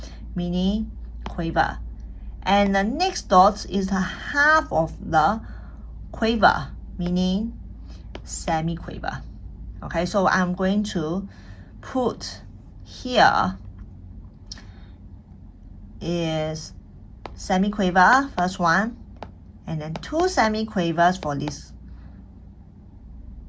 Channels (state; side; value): identical; both; correlation 1.00